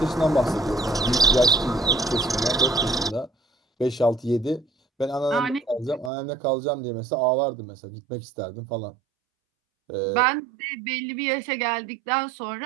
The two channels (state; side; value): drops out; left; at 6.1 s